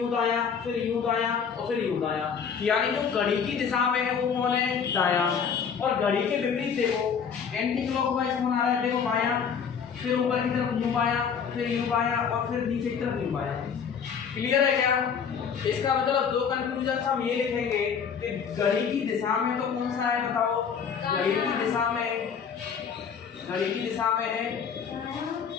दायां, फिर यूं दायां और फिर यूं दायां, यानी जो घड़ी की दिशा में है वो कौन है, दायां। और घड़ी के विपरीत देखो, एंटी क्लॉकवाइज कौन आ रहा है, देखो बायां, फिर ऊपर की तरफ यूं बायां, फिर यूं बायां और फिर नीचे की तरफ यूं बायां। क्लियर है क्या। इसका मतलब दो कंक्लूजन हम ये लिखेंगे कि घड़ी की दिशा में तो कौन सा है बताओ, घड़ी की दिशा में, घड़ी की दिशा में है,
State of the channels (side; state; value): right; quieter; 6.8 dB